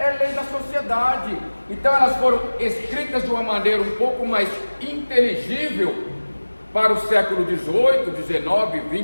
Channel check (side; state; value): both; inverted; correlation -1.00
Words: lei da sociedade. Então elas foram escritas de uma maneira um pouco mais inteligível para o século XVIII, XIX,